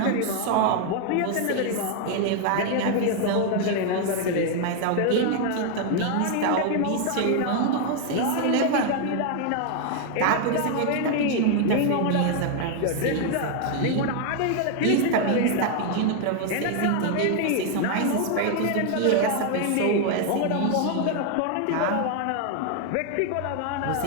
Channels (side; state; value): both; different; correlation 0.00